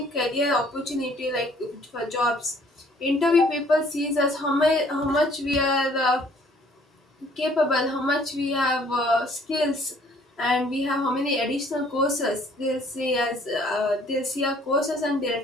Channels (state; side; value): normal; both; correlation 0.59